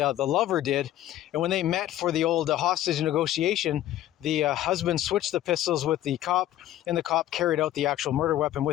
lover did, and when they met for the old hostage negotiation, the husband switched the pistols with the cop, and the cop carried out the actual murder weapon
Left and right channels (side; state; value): right; quieter; 13.2 dB